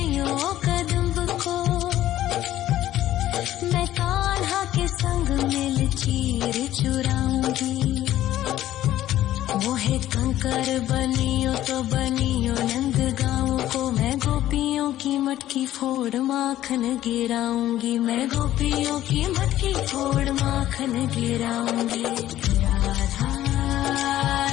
कदम्ब को। मैं कान्हा के संग मिल चीर चुराऊंगी। मोहे कंकर बनियो तो बनियो नंद गाँव को। मैं गोपियों की मटकी फोड़ माखन गिराऊंगी। मैं गोपियों की मटकी फोड़ माखन गिराऊंगी। राधा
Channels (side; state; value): right; quieter; 13.5 dB